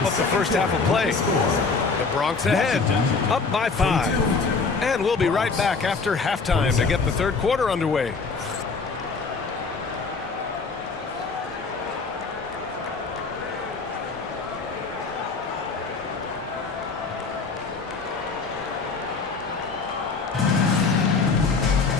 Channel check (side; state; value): right; quieter; 4.5 dB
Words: up the first half of play. The Bronx ahead, up by 5. And we'll be right back after halftime to get the third quarter underway.